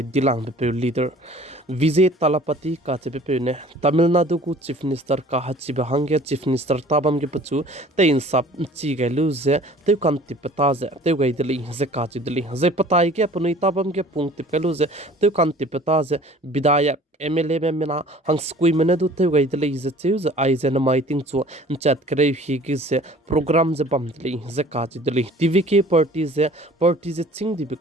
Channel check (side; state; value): both; normal; correlation 0.49